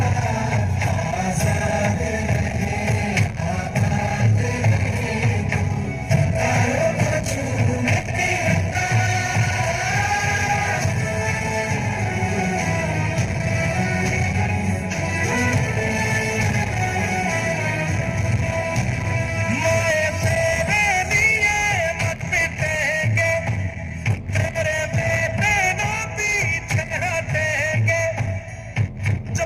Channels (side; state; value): both; identical; correlation 1.00